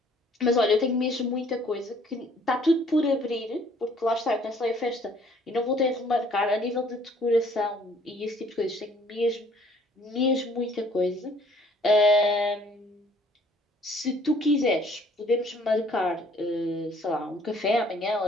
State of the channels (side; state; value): both; normal; correlation 0.59